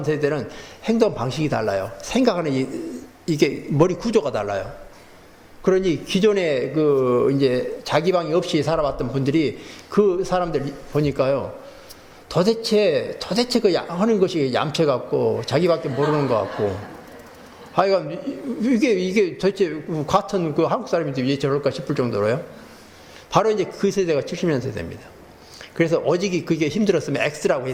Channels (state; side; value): identical; both; correlation 1.00